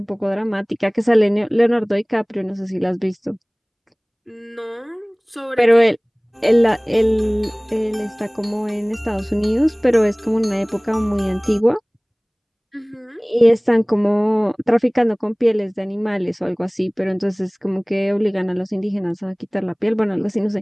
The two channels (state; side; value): identical; both; correlation 1.00